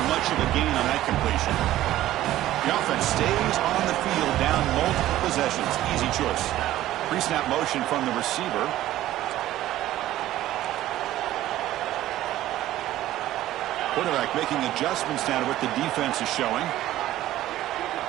much of a gain on that completion. The offense stays on the field down multiple possessions. Easy choice. Pre-snap motion from the receiver. Quarterback making adjustments now to what the defense is showing.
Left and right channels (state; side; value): quieter; left; 14.3 dB